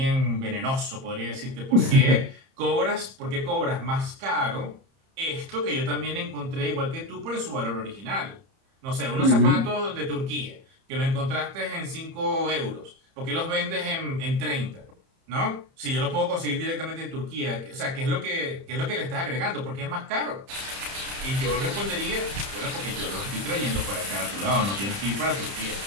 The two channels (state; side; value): late; left; 30 ms